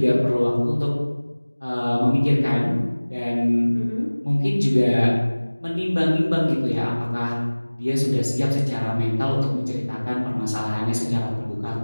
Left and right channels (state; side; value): inverted; both; correlation -1.00